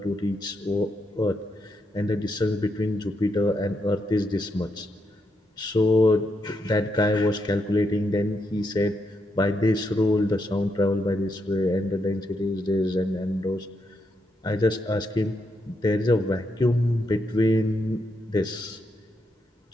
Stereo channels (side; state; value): both; normal; correlation 0.80